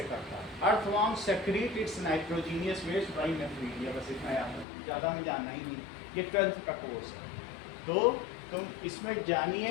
करता है। Earthworm secrete its nitrogenous waste by nephridia, बस इतना याद है, ज़्यादा में जानना ही नहीं, ये 12th का कोर्स है। तो तुम इसमें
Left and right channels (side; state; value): right; drops out; at 4.7 s